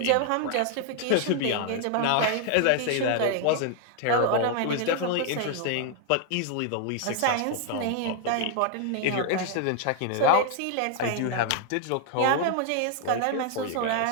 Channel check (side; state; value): both; different; correlation 0.00